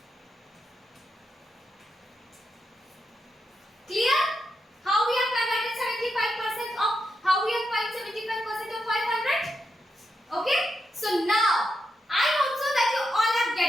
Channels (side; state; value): both; normal; correlation 0.85